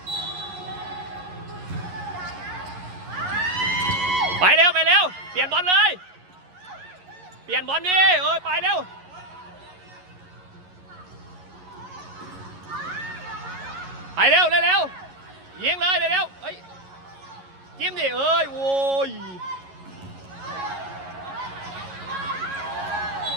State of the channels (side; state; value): left; late; 11 ms